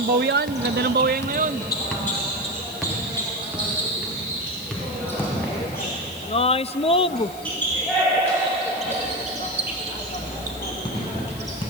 bawian. Ganda ng bawian ngayon. Nice move.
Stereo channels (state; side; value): noise; left; hiss, 17 dB below the sound